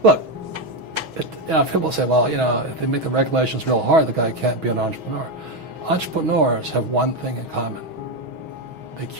Look, people say, well, if they make the regulations real hard, the guy can't be an entrepreneur. Entrepreneurs have one thing in common. They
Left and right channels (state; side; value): late; left; 6.3 ms